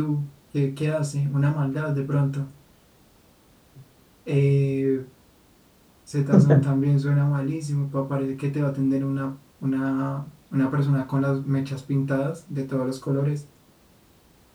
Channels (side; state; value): both; identical; correlation 1.00